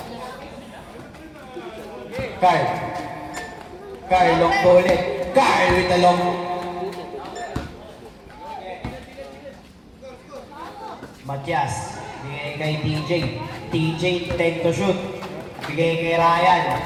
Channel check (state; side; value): identical; both; correlation 1.00